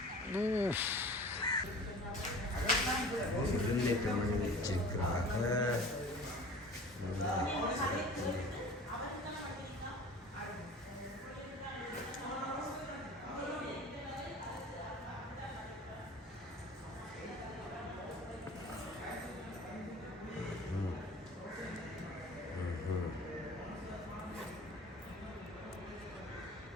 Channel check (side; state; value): both; normal; correlation 0.41